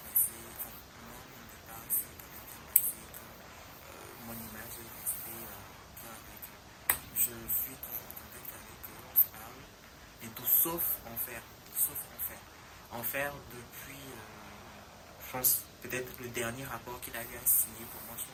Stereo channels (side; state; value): both; identical; correlation 1.00